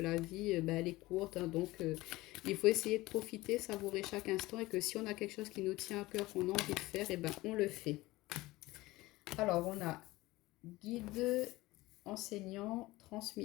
vie, elle est courte, hein. Donc il faut essayer de profiter, savourer chaque instant, et que si on a quelque chose qui nous tient à cœur, qu'on a envie de faire, et ben on le fait. Alors on a guide, enseignant,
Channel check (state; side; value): quieter; right; 19.3 dB